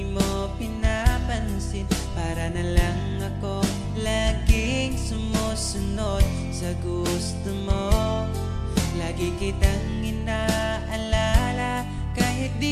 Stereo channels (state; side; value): identical; both; correlation 1.00